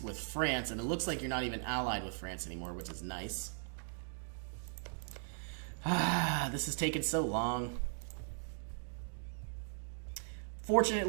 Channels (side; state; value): left; silent; digital silence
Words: with France, and it looks like you're not even allied with France anymore, which is nice. This has taken so long.